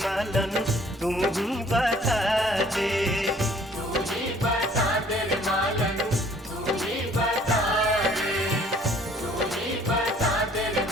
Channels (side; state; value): both; normal; correlation 0.57